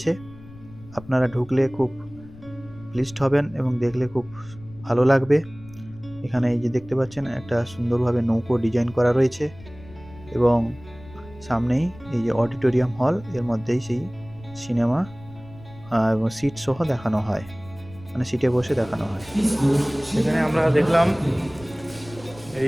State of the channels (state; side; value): noise; left; rumble, 20 dB below the sound